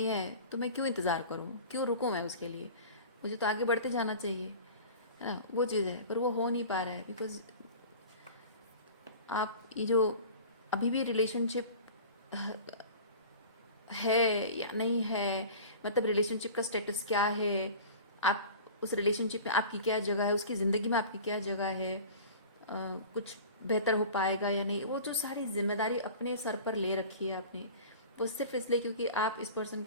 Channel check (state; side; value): inverted; both; correlation -0.39